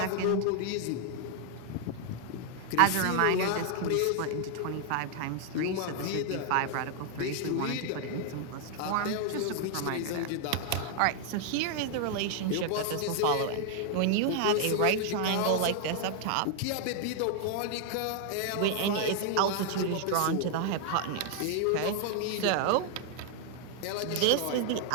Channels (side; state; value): both; different; correlation 0.00